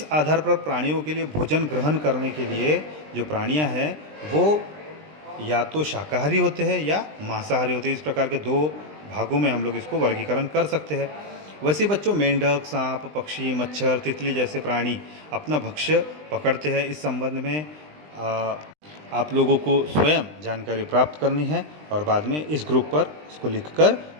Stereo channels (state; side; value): late; left; 20 ms